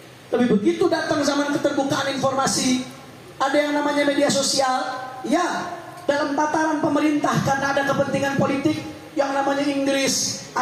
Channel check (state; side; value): identical; both; correlation 1.00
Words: Tapi begitu datang zaman keterbukaan informasi, ada yang namanya media sosial, ya, dalam tataran pemerintah karena ada kepentingan politik, yang namanya Inggris,